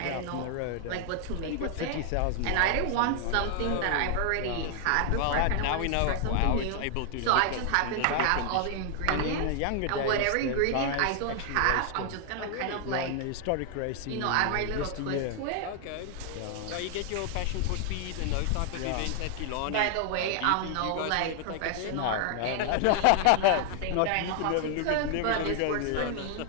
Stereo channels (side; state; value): both; different; correlation 0.00